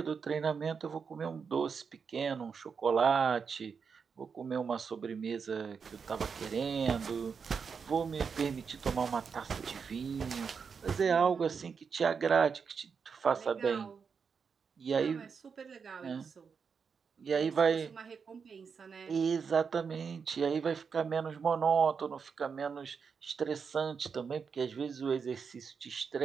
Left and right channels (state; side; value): quieter; left; 5.9 dB